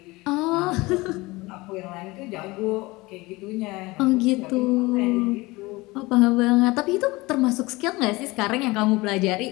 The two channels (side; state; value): right; quieter; 22.0 dB